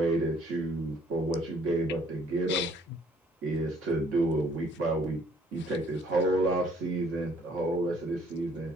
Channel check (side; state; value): both; normal; correlation 0.61